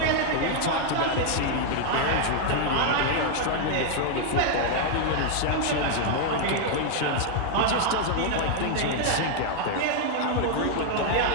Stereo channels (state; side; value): different; both; correlation 0.00